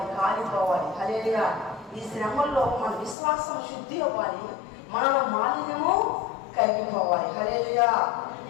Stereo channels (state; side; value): drops out; right; at 3.2 s